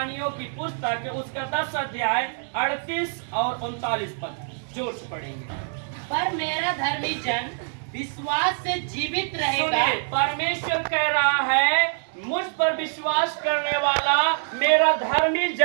की पुस्तक उसका 10 अध्याय 38 और 39 पद जोर से पढ़ेंगे। पर मेरा धर्मी जन विश्वास से जीवित रहेगा। परमेश्वर कह रहा है मुझ पर विश्वास करने वाला मेरा धर्मी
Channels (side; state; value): left; silent; digital silence